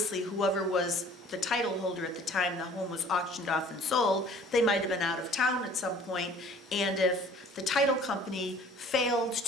whoever was the title holder at the time the home was auctioned off and sold, they might have been out of town at some point, and if the title company failed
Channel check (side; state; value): both; normal; correlation 0.51